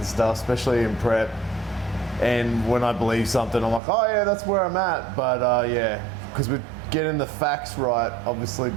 stuff, especially in prep. And when I believe something, I'm like, oh yeah, that's where I'm at. But yeah, because we're getting the facts right, obviously,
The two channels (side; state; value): left; drops out; at 3.8 s